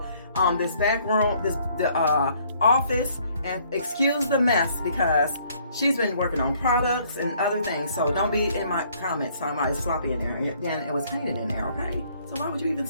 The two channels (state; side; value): inverted; both; correlation -0.63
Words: this back room, the office, and excuse the mess because she's been working on products and other things. So don't be in my comments talking about it's sloppy in there. Then it was painted in there, okay? So why would you even